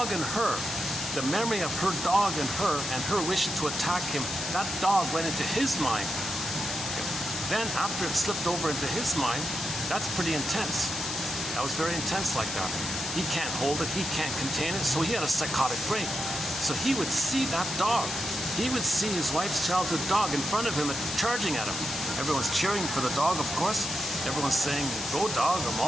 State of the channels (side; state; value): left; noise; hiss, 4 dB below the sound